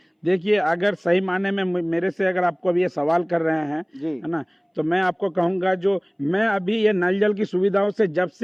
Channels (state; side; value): identical; both; correlation 1.00